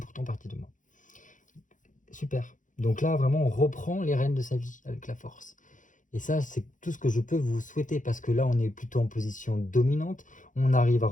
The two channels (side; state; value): right; late; 0.37 ms